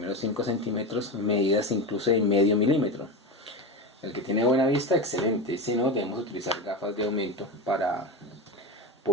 5 centímetros medidas incluso de medio milímetro. El que tiene buena vista, excelente. Si no, debemos utilizar gafas de aumento para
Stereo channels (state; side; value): normal; both; correlation 0.20